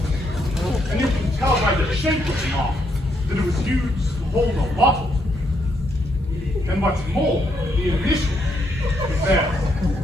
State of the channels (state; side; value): normal; both; correlation 0.75